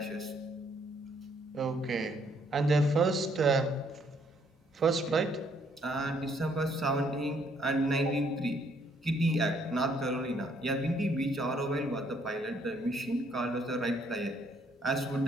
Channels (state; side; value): normal; both; correlation 0.67